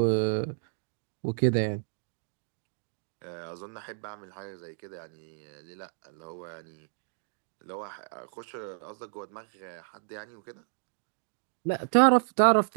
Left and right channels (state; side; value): silent; left; digital silence